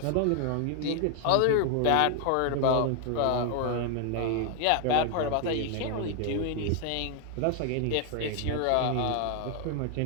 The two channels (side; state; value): both; different; correlation 0.00